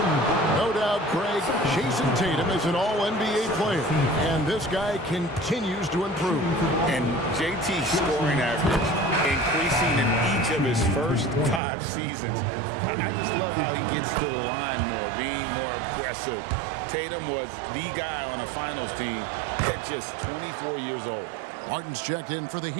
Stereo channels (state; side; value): drops out; left; at 11.6 s